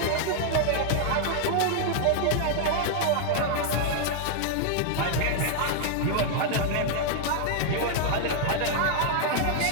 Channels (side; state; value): both; different; correlation -0.01